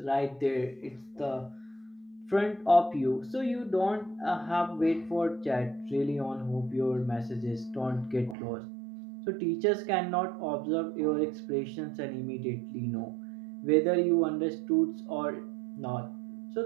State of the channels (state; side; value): drops out; left; at 8.3 s